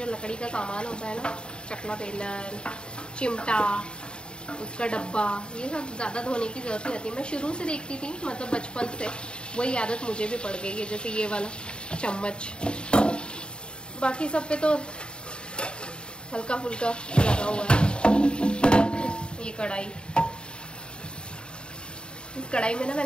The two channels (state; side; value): late; right; 0.051 ms